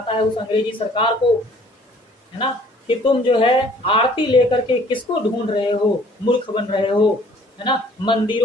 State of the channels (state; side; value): normal; both; correlation 0.56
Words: है उस अंग्रेजी सरकार को, है ना, कि तुम जो है आरती लेकर के किसको ढूंढ रहे हो, मूर्ख बन रहे हो, है ना,